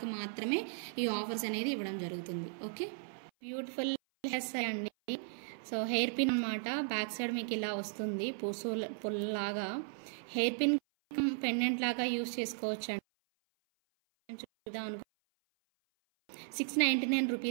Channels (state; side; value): silent; left; 54 dB below the other